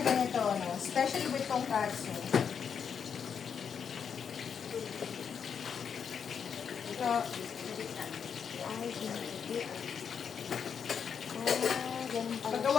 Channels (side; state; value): right; quieter; 7.1 dB